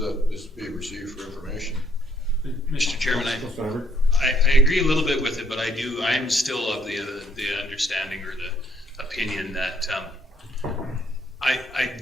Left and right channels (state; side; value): normal; both; correlation 0.68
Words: this be received for information. Mr. Chairman, I agree a little bit with it, but I'm still of the understanding or the opinion that